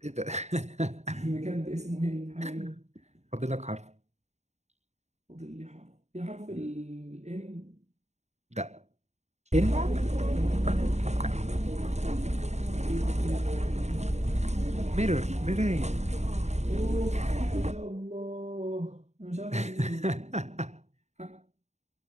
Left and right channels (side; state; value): left; late; 0.32 ms